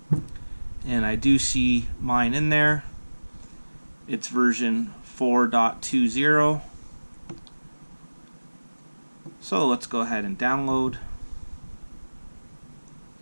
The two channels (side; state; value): both; inverted; correlation -1.00